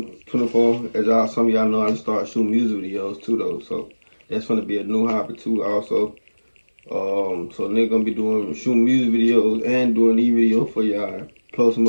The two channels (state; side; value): inverted; both; correlation -1.00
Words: As y'all, some of y'all know, I just started shooting music videos too, though. So that's gonna be a new hobby too, also. So they're gonna be shooting music videos and doing e-video for y'all. Close